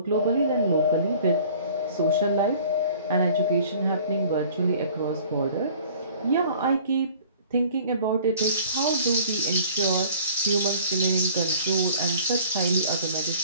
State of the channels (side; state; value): both; inverted; correlation -0.50